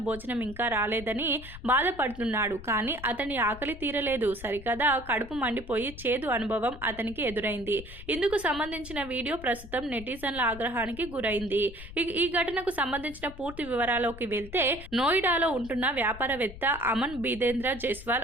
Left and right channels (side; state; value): left; noise; rumble, 14 dB below the sound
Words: భోజనం ఇంకా రాలేదని బాధపడుతున్నాడు. కానీ అతని ఆకలి తీరలేదు సరికదా, కడుపు మండిపోయి చేదు అనుభవం అతనికి ఎదురైంది. ఇందుకు సంబంధించిన వీడియో ప్రస్తుతం నెటిజన్ల ఆగ్రహానికి గురైంది. ఈ ఘటనకు సంబంధించిన పూర్తి వివరాల్లోకి వెళ్తే, నోయిడాలో ఉంటున్న వ్యాపారవేత్త అమన్ బీదేంద్ర జైస్వాల్